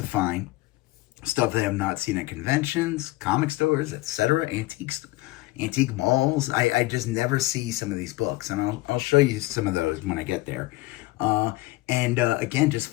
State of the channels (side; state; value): right; quieter; 19.6 dB